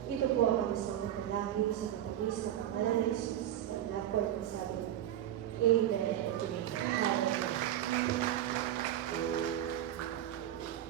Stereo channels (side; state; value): left; quieter; 11.7 dB